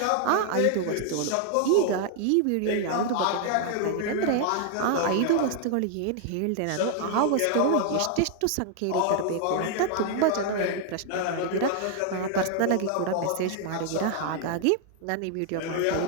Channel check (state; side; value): different; both; correlation 0.00